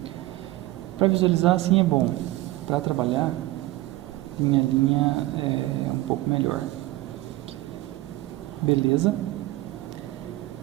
Para visualizar assim é bom. Para trabalhar, linha a linha é um pouco melhor. Beleza?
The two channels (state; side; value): quieter; left; 17.6 dB